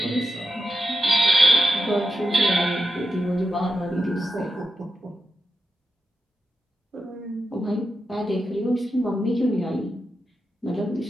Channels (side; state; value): both; normal; correlation 0.88